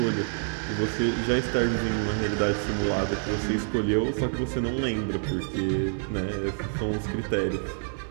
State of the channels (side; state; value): left; silent; 60 dB below the other